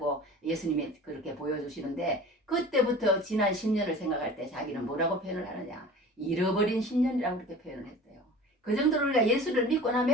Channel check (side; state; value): both; normal; correlation 0.40